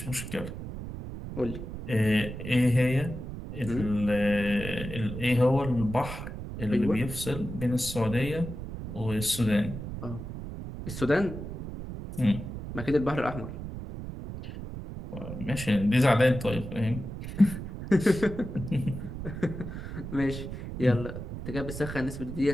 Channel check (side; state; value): right; noise; rumble, 8 dB below the sound